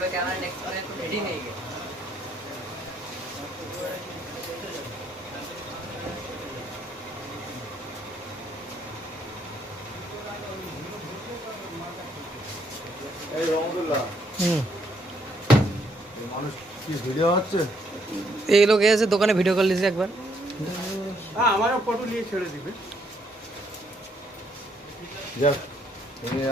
ক্যামেরা নেক্সট রেডি হয়ে গেছে। এই রহমতুল্লাহ মানুষ কি ভিডিও হচ্ছে? এই লোক এসে দোকানে ভিডিও কল দিয়েছে একবার। হ্যাঁ আমারও ফটো নিয়ে ছেড়ে দিবে। যাক তুমি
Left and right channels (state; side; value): normal; both; correlation 0.71